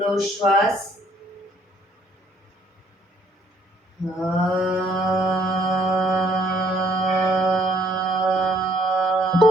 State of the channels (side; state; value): both; normal; correlation 0.64